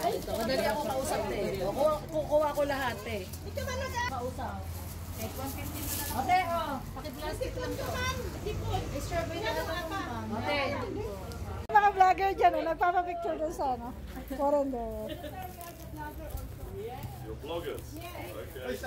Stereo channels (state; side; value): identical; both; correlation 1.00